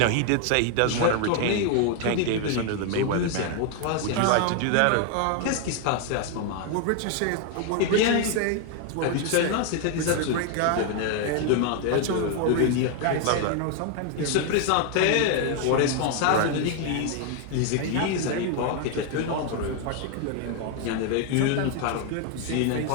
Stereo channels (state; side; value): different; both; correlation 0.00